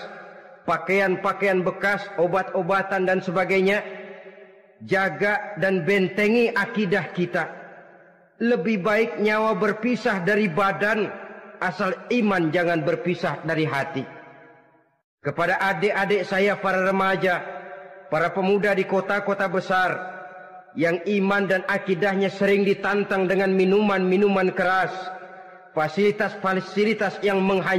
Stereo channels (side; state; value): both; identical; correlation 1.00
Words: pakaian-pakaian bekas, obat-obatan dan sebagainya. Jaga dan bentengi akidah kita. Lebih baik nyawa berpisah dari badan, asal iman jangan berpisah dari hati. Kepada adik-adik saya para remaja, para pemuda di kota-kota besar, yang iman dan akidahnya sering ditantang dengan minuman-minuman keras, fasilitas-fasilitas yang